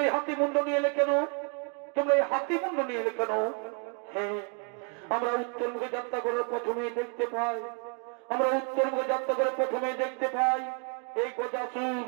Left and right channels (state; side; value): quieter; left; 37.1 dB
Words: এই হাতি মুন্ড নিয়ে এলে কেন, তোমরা এই হাতি মুন্ড নিয়ে এলে কেন? হ্যাঁ, আমরা উত্তর মুখে যাত্রা করার প্রথমে দেখতে পাই, আমরা উত্তর মুখে যাত্রা করে প্রথমে দেখতে পাই এই গজাসুর